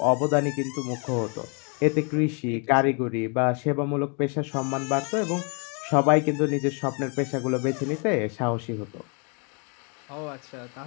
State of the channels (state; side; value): quieter; right; 36.1 dB